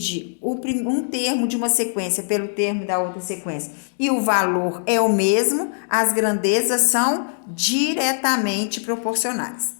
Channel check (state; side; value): silent; right; digital silence